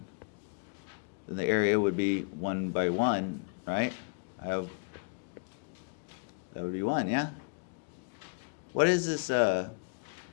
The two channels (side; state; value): right; quieter; 39.0 dB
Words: then the area would be 1 by 1, right? That would be 1, yeah? What is this? All